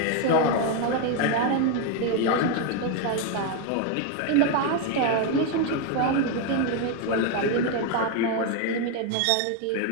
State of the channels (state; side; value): different; both; correlation 0.01